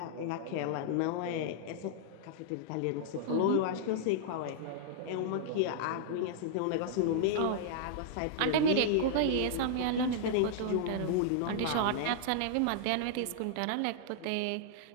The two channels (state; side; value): different; both; correlation -0.01